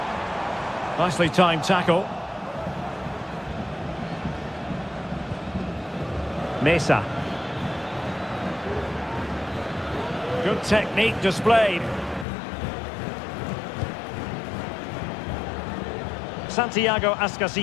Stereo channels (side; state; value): right; drops out; at 12.2 s